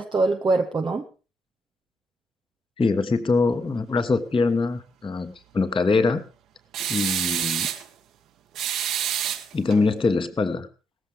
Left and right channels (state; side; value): normal; both; correlation 0.80